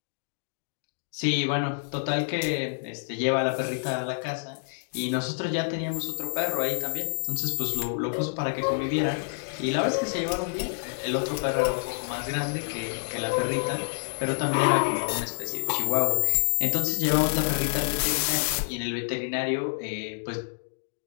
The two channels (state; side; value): silent; right; digital silence